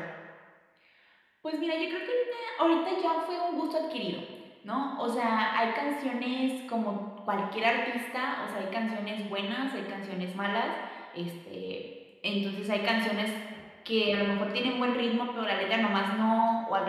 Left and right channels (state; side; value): identical; both; correlation 1.00